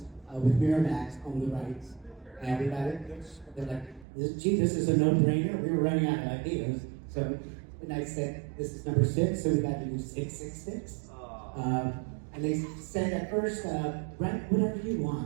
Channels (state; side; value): drops out; left; at 4.0 s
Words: with Miramax owned the rights, and we got it pitched. They're like, "Gee, this is a no-brainer." We were running out of ideas, so and I said, "This is number 6, so we got to do 666." And they said at first, "Write whatever you